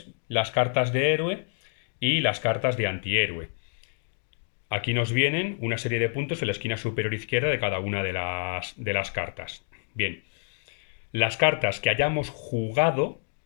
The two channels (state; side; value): silent; right; digital silence